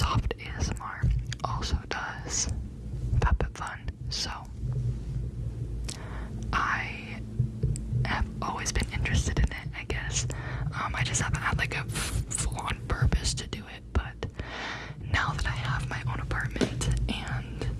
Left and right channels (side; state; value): both; identical; correlation 1.00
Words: ASMR also does Fab Fit Fun, so I have always been interested in it, I guess. I just haven't had like a full-on purpose to do it, but now that I have my own apartment and